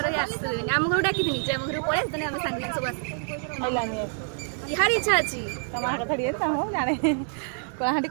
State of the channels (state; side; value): silent; left; 60 dB below the other